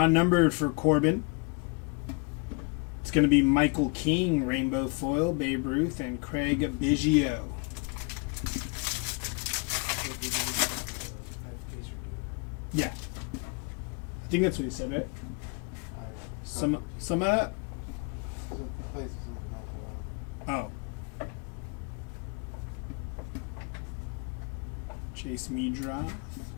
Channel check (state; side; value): quieter; right; 32.9 dB